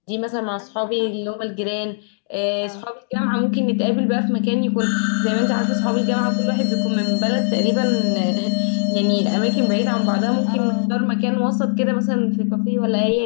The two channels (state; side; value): silent; right; digital silence